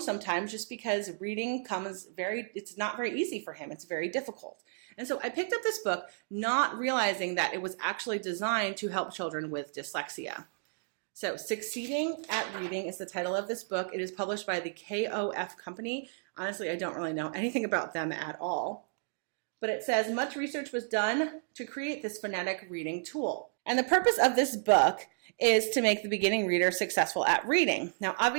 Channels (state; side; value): silent; left; digital silence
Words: sometimes just because reading it's not very easy for him. It's very difficult. And so I picked up this book not realizing that it was actually designed to help children with dyslexia. So Succeeding at Reading is the title of this book. It is published by the KOF company. Honestly, I don't really know anything about them at all. But it says much research was done to create this phonetic reading tool. And the purpose of this book is to make the beginning reader successful at reading. Now,